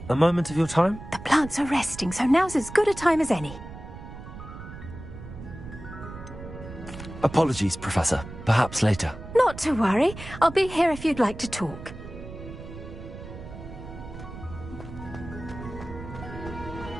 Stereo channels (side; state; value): right; noise; rumble, 13 dB below the sound